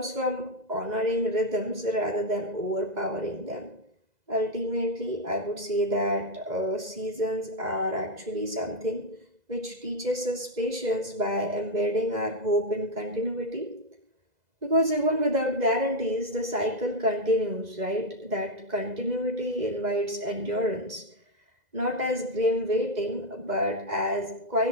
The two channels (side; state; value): left; late; 2.0 ms